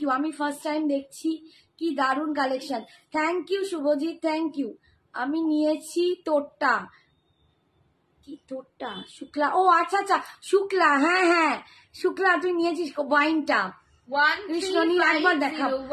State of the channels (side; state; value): both; identical; correlation 1.00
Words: ইউ, আমি ফার্স্ট টাইম দেখছি, কি দারুণ collection, thank you Shubhajit, thank you. আমি নিয়েছি তোরটা, কি তোরটা শুক্লা, ও আচ্ছা আচ্ছা শুক্লা, হ্যাঁ হ্যাঁ শুক্লা, তুই নিয়েছিস ওয়াইনটা, কৃষ্ণনীল একবার দেখাও,